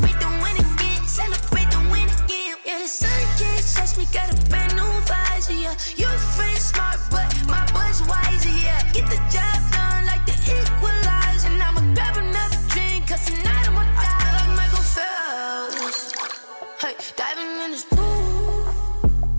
the win again, celebrate the win again. Yeah, the sun can't touch me, got a brand new visor, yeah. You're friend smart, but my boy's wiser, yeah. Get the job done like the equalizer. And I'ma grab another drink, cause tonight I'ma die like Michael Phelps. Hey, diving in this pool,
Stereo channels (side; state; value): both; inverted; correlation -1.00